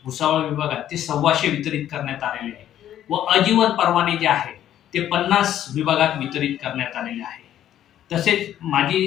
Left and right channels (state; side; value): quieter; right; 11.4 dB